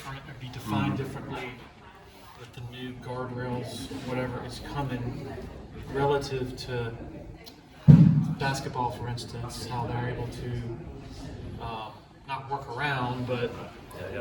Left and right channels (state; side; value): identical; both; correlation 1.00